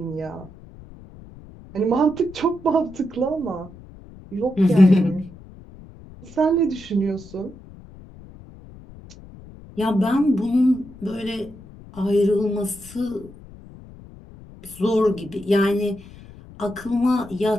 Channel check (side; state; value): left; noise; rumble, 19 dB below the sound